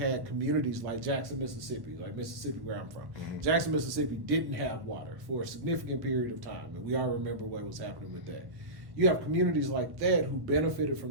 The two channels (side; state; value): left; late; 1.1 ms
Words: communities like Jackson, Mississippi, like Mississippi, where I'm from. Jackson, Mississippi didn't have water for a significant period of time, and we all remember what was happening with that. You have communities like that who benefited